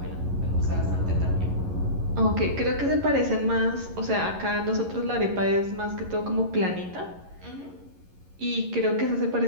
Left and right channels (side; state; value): left; late; 11 ms